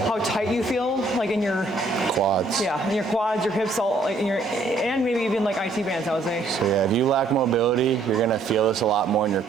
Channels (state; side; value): quieter; left; 3.2 dB